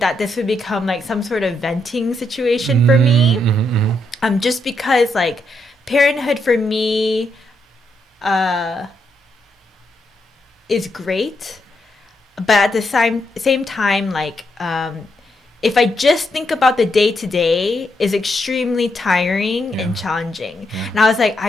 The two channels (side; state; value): both; normal; correlation 0.79